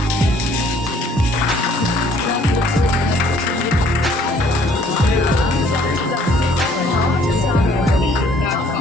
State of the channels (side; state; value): both; normal; correlation 0.60